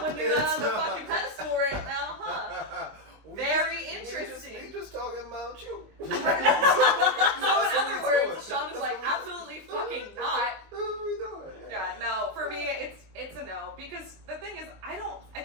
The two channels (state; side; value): late; left; 19 ms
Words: when you're it's on the not. fucking pedestal right now, huh? Very interesting. We just talking about you. So in other words, Shaun is like, absolutely fucking not. That's what we doing. Yeah, no. For me, it's a no because the thing is, I